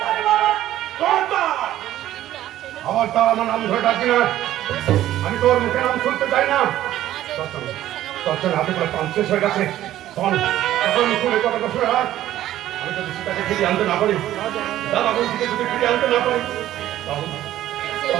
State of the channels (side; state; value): left; quieter; 13.3 dB